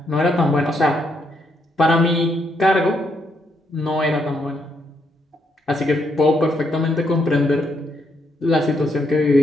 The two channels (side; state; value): both; normal; correlation 0.76